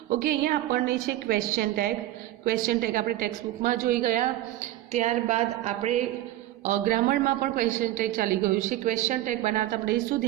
ओके, अहींया आपणे छे क्वेश्चन टैग। क्वेश्चन टैग आपणे टेक्स्टबुक में जोई गया। त्यारबाद आपणे ग्रामर में पण क्वेश्चन टैग चाली गयुं छे। क्वेश्चन टैग बनावता आपणे शुं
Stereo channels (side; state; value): left; quieter; 14.9 dB